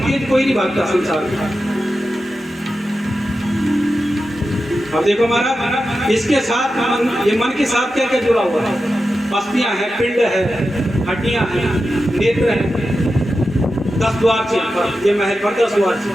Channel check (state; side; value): normal; both; correlation 0.91